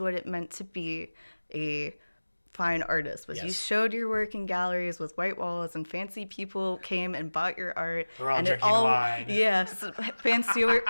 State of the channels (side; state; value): both; inverted; correlation -1.00